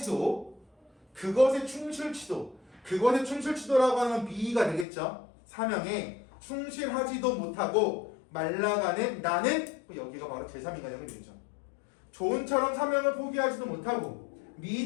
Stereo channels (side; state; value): right; drops out; at 4.9 s